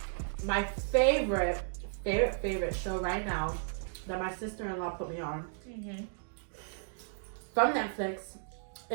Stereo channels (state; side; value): silent; left; digital silence